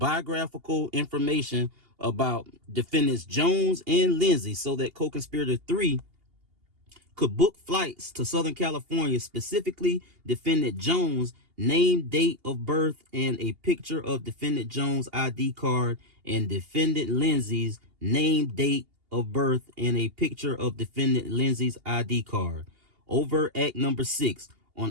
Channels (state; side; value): late; left; 2.8 ms